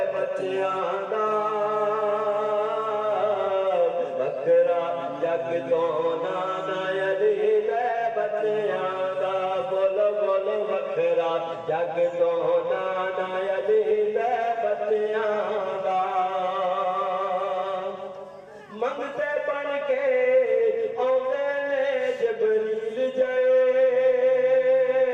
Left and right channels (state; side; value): identical; both; correlation 1.00